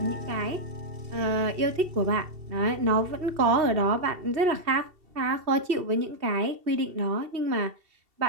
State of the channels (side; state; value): left; late; 2.7 ms